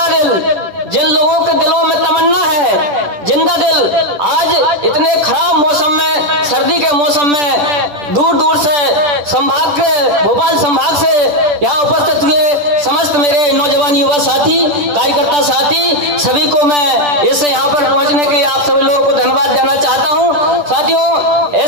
दिल जिन लोगों के दिलों में तमन्ना है, जिंदा दिल आज इतने खराब मौसम में, सर्दी के मौसम में दूर दूर से संभाग के, भोपाल संभाग से यहाँ उपस्थित हुए समस्त मेरे नौजवान युवा साथी, कार्यकर्ता साथी, सभी को मैं इससे यहाँ पर पहुँचने के लिए आप सभी लोगों को धन्यवाद देना चाहता हूँ। साथियों,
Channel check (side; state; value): left; late; 10 ms